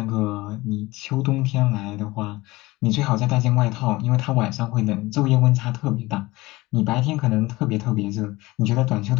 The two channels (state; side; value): quieter; right; 20.4 dB